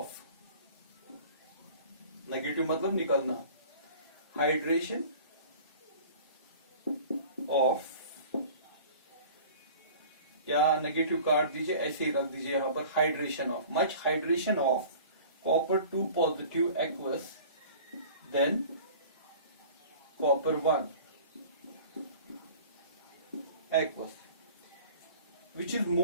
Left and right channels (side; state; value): both; inverted; correlation -0.45